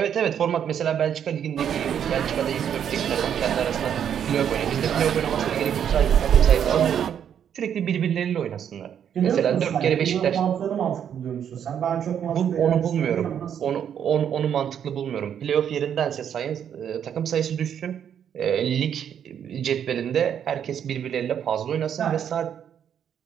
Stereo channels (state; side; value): quieter; left; 8.8 dB